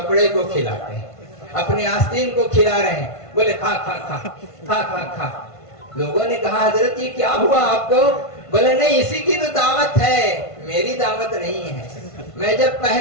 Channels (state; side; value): late; right; 1.5 ms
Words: को खिलाते हैं अपने आस्तीन को खिला रहे हैं बोले खा खा खा खा खा खा लोगों ने कहा हजरत ये क्या हुआ आपको बोले नहीं इसी की तो दावत है मेरी दावत नहीं है मैं जब